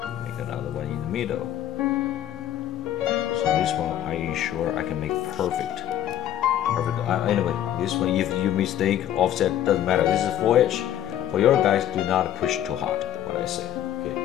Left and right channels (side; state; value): right; quieter; 11.6 dB